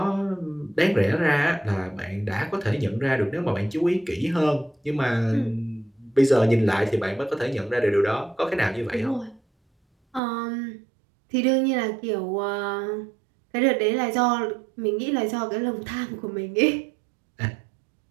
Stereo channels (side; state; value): left; drops out; at 10.2 s